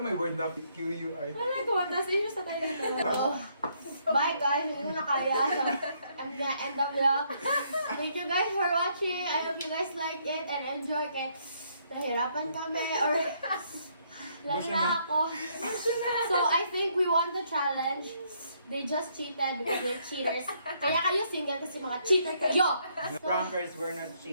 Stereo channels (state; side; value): inverted; both; correlation -0.70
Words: word na QUI. Wala ko, tapos inyo sa tayo nito. Bye guys, hindi na kaya. I'm gonna end the vlog. Thank you guys for watching. I hope you guys like it and enjoy. Kaya nahirapan kami or lalo na ako. So I think we won the challenge. They just cheated with their cheaters. Kaya kayo single kasi mga cheater kayo. The prankers were not